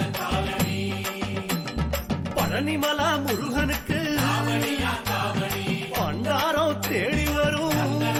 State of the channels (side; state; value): both; identical; correlation 1.00